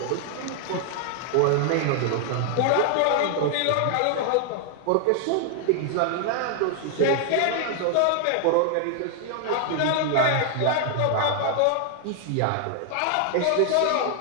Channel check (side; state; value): both; different; correlation 0.00